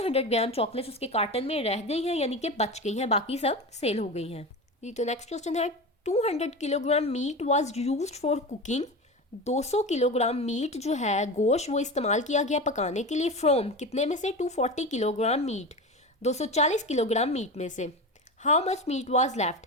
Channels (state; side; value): normal; both; correlation 0.26